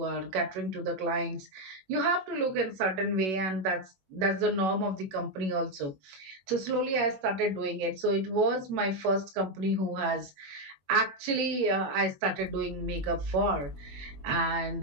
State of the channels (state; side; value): late; left; 21 ms